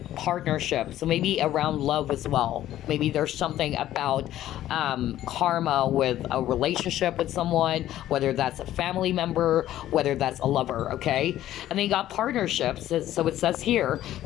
partnership. So maybe around love as well. Maybe there's something about karma with a relationship with someone, whether that's a family member, whether that's a lover, okay? And then you got partnerships. So it says here,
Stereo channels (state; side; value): quieter; right; 13.1 dB